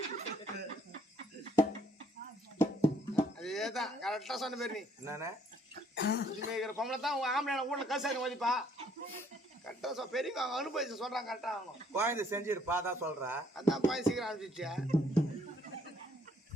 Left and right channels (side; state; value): both; normal; correlation 0.64